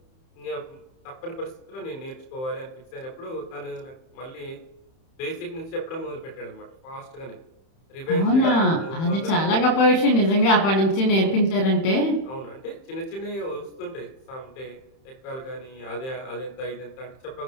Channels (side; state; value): right; late; 31 ms